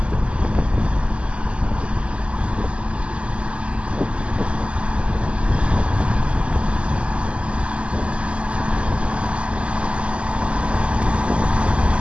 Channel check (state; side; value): late; left; 0.056 ms